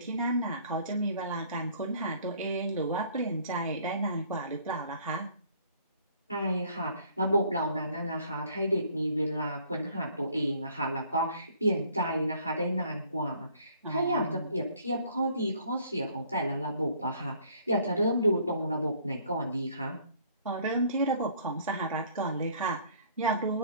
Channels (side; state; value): both; inverted; correlation -0.59